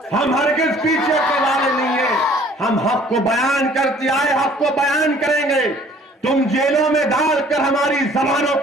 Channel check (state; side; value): normal; both; correlation 0.55